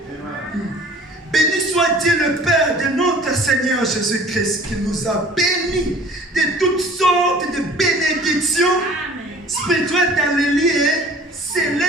Béni soit Dieu le Père de notre Seigneur Jésus-Christ qui nous a bénis de toutes sortes de bénédictions spirituelles dans les lieux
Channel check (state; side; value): normal; both; correlation 0.48